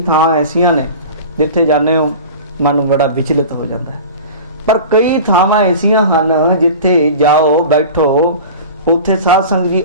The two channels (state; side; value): inverted; both; correlation -0.36